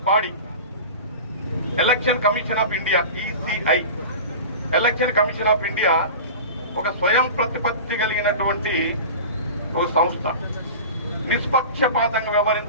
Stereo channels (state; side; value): inverted; both; correlation -0.33